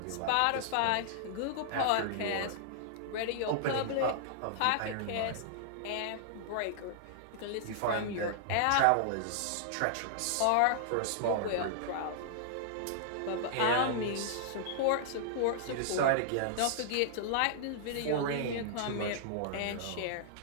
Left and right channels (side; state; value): both; different; correlation -0.01